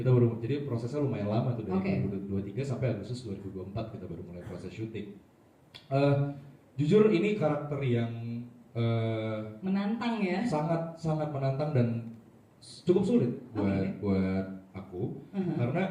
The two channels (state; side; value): identical; both; correlation 1.00